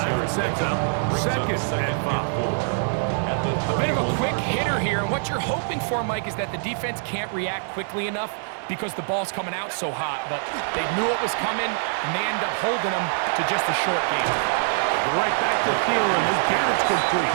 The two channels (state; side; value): silent; left; digital silence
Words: and sets up second and 5. A bit of a quick hitter here, and what you're hoping for, Mike, is that the defense can't react quickly enough because the ball's coming out so hot, but they knew it was coming, and they end up holding them to just a short game. Right back to Thielen. Again, it's complete.